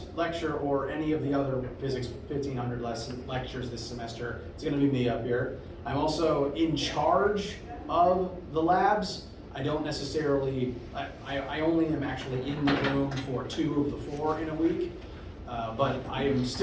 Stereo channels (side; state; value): both; identical; correlation 1.00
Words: lecture or any of the other Physics 1500 lectures this semester, it's going to be me up here. I'm also in charge of the labs. I don't necessarily, I only am actually in the room for 2 of the 4 in a week. But I am